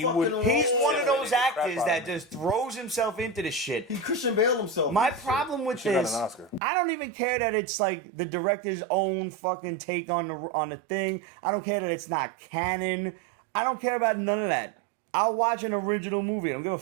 role. He's one of those actors that just throws himself into the shit. He Christian Bale himself. My problem with this, I don't even care that it's like the director's own fucking take on the thing. I don't care that it's not canon. I don't care about none of that. I'll watch an original movie. I don't give a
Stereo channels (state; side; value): drops out; left; at 6.6 s